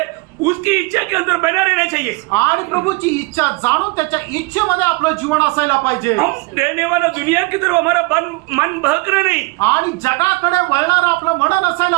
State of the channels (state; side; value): quieter; left; 26.2 dB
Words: उसकी इच्छा के अंदर बना रहना चाहिए। आणि प्रभूची इच्छा जाणून त्याच्या इच्छेमध्ये आपलं जीवन असायला पाहिजे. हम रहने वाला दुनिया की तरफ हमारा मन बहकना नहीं। आणि जगाकडे वळणारं आपलं मन